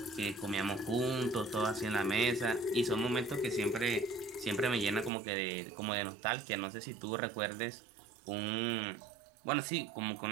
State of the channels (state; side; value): drops out; left; at 5.1 s